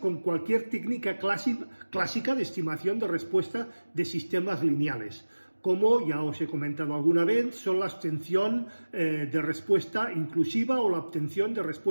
cualquier técnica clásica de estimación de respuesta de sistemas lineales, como ya os he comentado alguna vez, son la obtención de respuesta inclusiva o la obtención de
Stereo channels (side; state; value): both; inverted; correlation -1.00